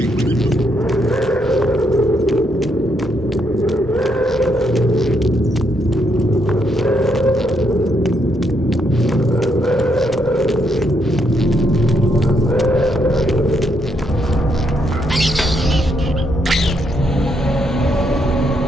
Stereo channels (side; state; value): both; normal; correlation 0.76